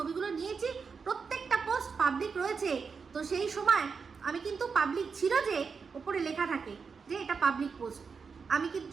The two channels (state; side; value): quieter; left; 5.4 dB